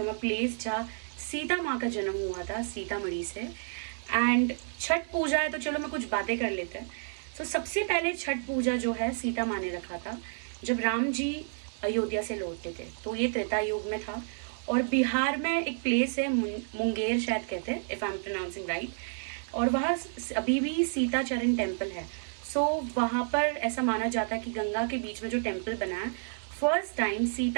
a place जहाँ सीता माँ का जन्म हुआ था, सीतामढ़ी से। एंड छठ पूजा है, तो चलो मैं कुछ बातें कर लेते हैं। सो सबसे पहले छठ पूजा जो है सीता माँ ने रखा था जब राम जी अयोध्या से लौटते थे, तो ये त्रेता युग में था। और बिहार में एक प्लेस है मुंगेर शायद कहते हैं, if I am pronouncing right, और वहाँ अभी भी सीता चरण टेम्पल है। सो वहाँ पर ऐसा माना जाता है कि गंगा के बीच में जो टेम्पल बना है, फर्स्ट टाइम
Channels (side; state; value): left; silent; digital silence